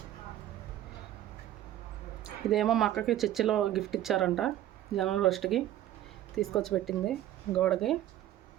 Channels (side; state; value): left; quieter; 12.8 dB